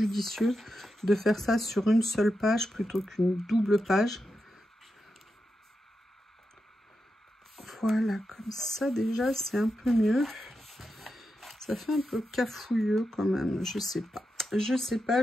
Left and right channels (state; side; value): normal; both; correlation 0.88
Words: de faire ça sur une seule page plutôt qu'une double page. Voilà, comme ça déjà, c'est un peu mieux. Ça fait un peu cafouilleux quand même, je sais pas. Je sais pas,